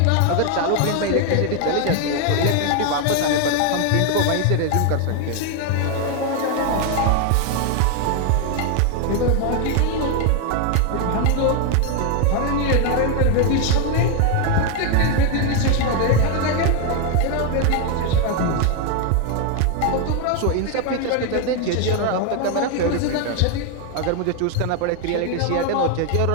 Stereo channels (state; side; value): different; both; correlation 0.01